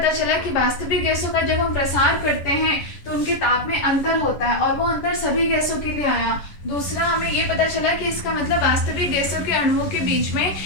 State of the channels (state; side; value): late; right; 10 ms